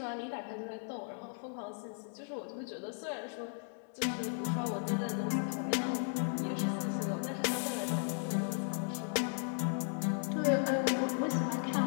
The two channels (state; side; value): silent; right; 54 dB below the other